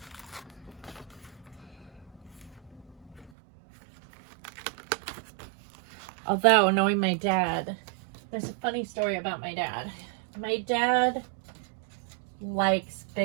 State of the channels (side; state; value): left; drops out; at 3.3 s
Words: Although, knowing my dad, there's a funny story about my dad. My dad likes